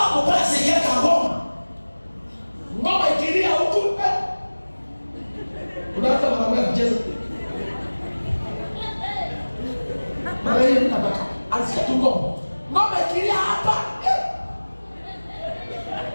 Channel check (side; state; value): both; inverted; correlation -1.00